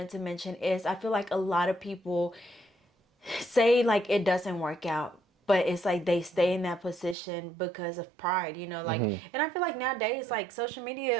to mention is I feel like a lot of people say like it doesn't work out, but it's like they stay in that position because of pride, like, and I feel like nowadays, like social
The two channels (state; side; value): drops out; left; at 7.2 s